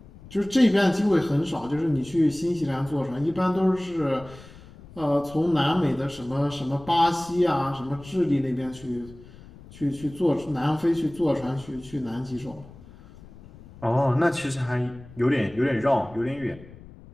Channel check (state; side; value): noise; left; rumble, 20 dB below the sound